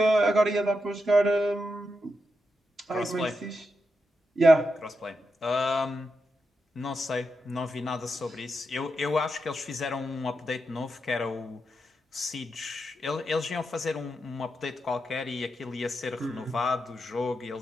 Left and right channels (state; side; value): normal; both; correlation 0.86